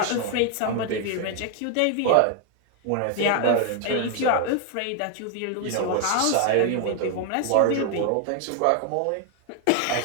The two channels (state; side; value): different; both; correlation 0.00